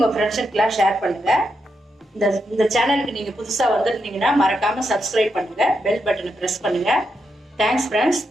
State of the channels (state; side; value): normal; both; correlation 0.83